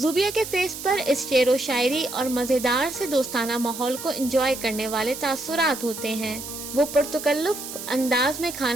کے فیس پر اس شعر و شاعری اور مزیدار سے دوستانہ ماحول کو انجوائے کرنے والے تاثرات ہوتے ہیں۔ وہ پرتکلف انداز میں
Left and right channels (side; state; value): right; noise; hiss, 9 dB below the sound